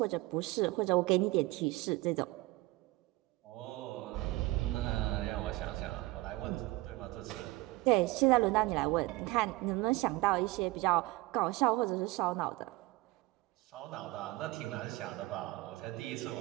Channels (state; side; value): quieter; left; 20.7 dB